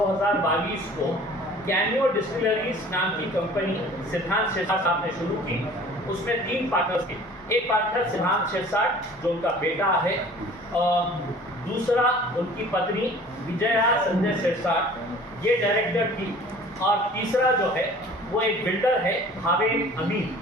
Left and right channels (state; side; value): normal; both; correlation 0.47